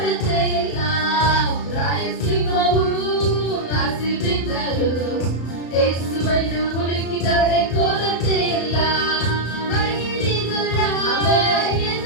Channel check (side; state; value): right; late; 34 ms